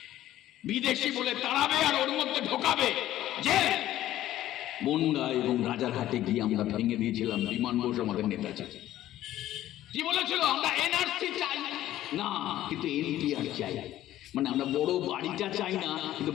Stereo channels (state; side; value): quieter; right; 13.6 dB